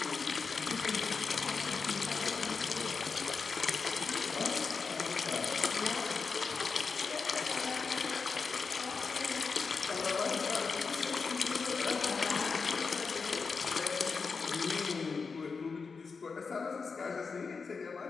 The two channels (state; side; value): quieter; right; 4.9 dB